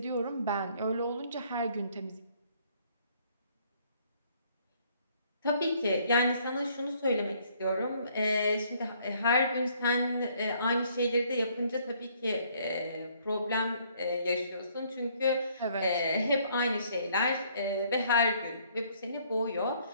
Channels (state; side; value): inverted; both; correlation -0.64